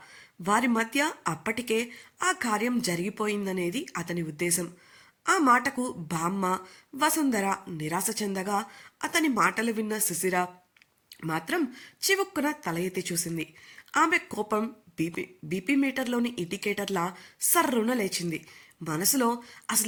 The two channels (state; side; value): identical; both; correlation 1.00